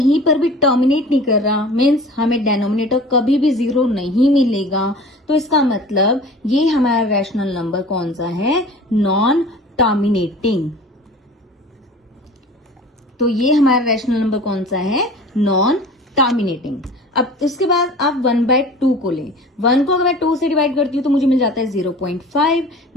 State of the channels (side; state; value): both; normal; correlation 0.41